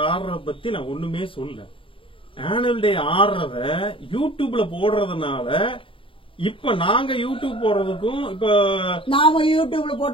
ஆடுறத பத்தி நான் ஒண்ணுமே சொல்ல. ஆனுவல் டே ஆடுறத யூடியூப்ல போடுறதுனால இப்ப நாங்க யூடியூப் போடுறதுக்கும் இப்ப நாம யூடியூப்ல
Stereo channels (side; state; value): right; late; 0.25 ms